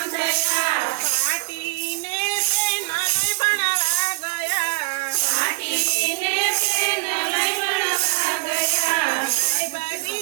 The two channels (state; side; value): quieter; left; 28.8 dB